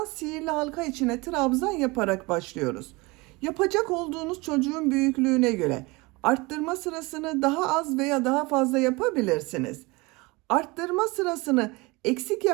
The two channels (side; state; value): left; quieter; 24.5 dB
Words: sihirli halka içine trabzan yaparak başlıyoruz. Yapacak olduğunuz çocuğun büyüklüğüne göre arttırma sırasını daha az veya daha fazla yapabilirsiniz. Arttırma sırasını eksik